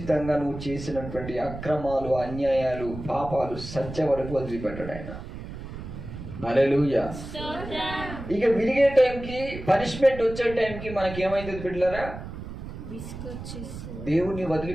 నువ్వు చేసినటువంటి అక్రమాలు, అన్యాయాలు, పాపాలు సత్య వరకు వదిలిపెట్టాడు ఆయన. హల్లెలూయా. ఇక విరిగే టైంకి, పనిష్మెంట్ వచ్చే టైంకి మనకి ఏమైతుంది బిడ్డలారా? దేవుని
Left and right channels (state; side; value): noise; right; rumble, 10 dB below the sound